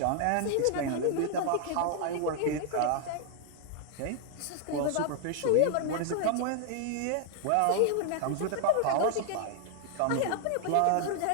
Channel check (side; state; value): both; different; correlation 0.00